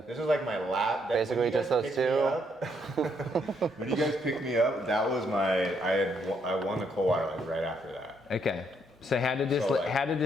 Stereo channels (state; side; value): normal; both; correlation 0.73